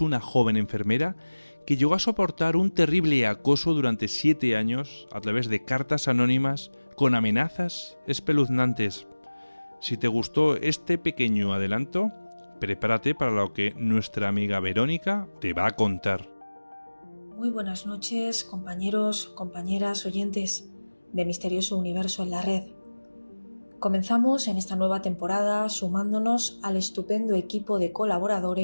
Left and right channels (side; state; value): both; inverted; correlation -1.00